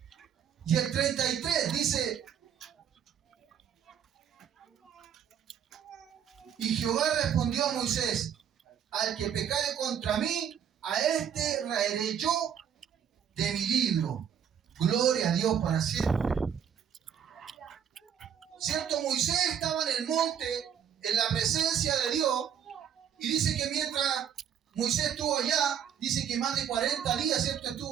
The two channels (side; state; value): left; quieter; 8.5 dB